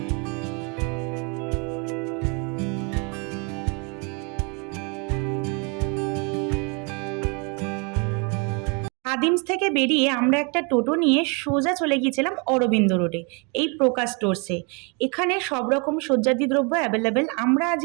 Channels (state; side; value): quieter; left; 33.4 dB